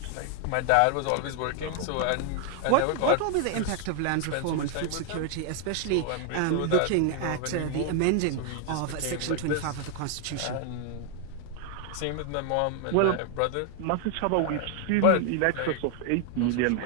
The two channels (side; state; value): both; different; correlation 0.00